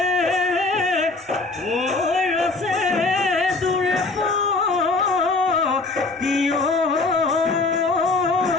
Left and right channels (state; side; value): quieter; right; 3.5 dB